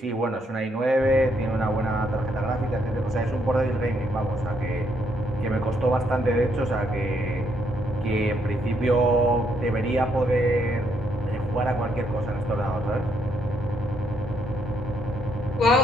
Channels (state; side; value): normal; both; correlation 0.73